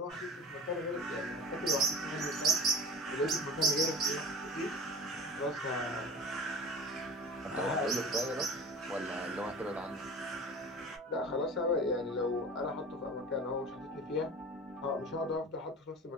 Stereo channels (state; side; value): normal; both; correlation 0.37